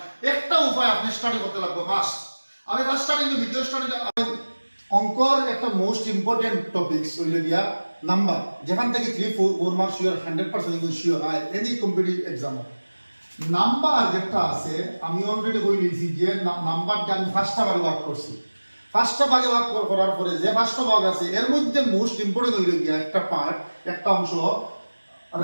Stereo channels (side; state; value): both; inverted; correlation -1.00